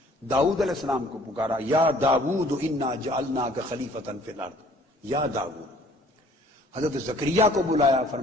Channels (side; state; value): both; normal; correlation 0.56